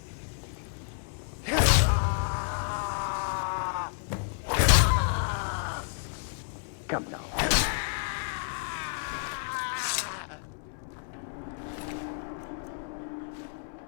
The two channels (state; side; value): silent; right; 56 dB below the other